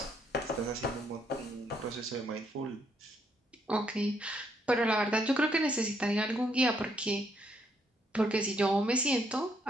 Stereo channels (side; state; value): both; normal; correlation 0.73